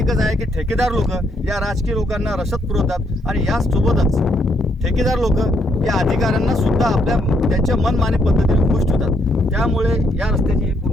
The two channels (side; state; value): both; normal; correlation 0.73